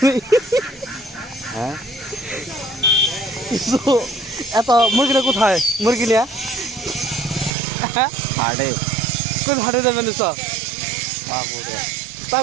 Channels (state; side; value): drops out; left; at 7.5 s